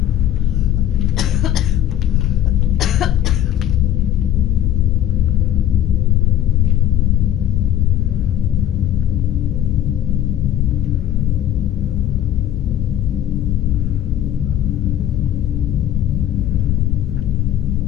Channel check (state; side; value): quieter; right; 11.6 dB